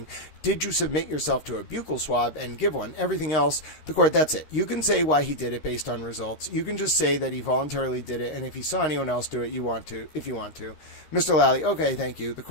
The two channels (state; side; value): late; right; 13 ms